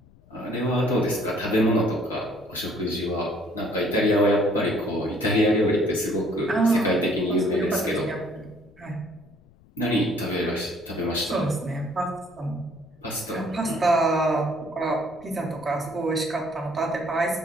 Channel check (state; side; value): noise; left; rumble, 27 dB below the sound